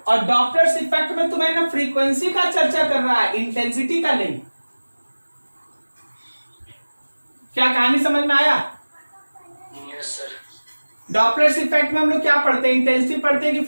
और डॉप्लर्स इफेक्ट में तुम्हें ना फ्रीक्वेंसी का चर्चा कर रहा है, इंटेंसिटी का नहीं। क्या कहानी समझ में आया? Yes sir. डॉप्लर्स इफेक्ट में हम लोग क्या पढ़ते हैं, इंटेंसिटी पढ़ते हैं कि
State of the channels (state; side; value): inverted; both; correlation -1.00